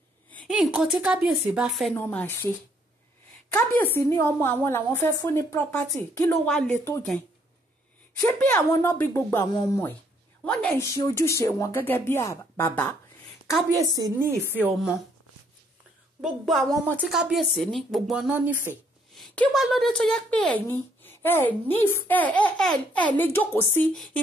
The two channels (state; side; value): normal; both; correlation 0.68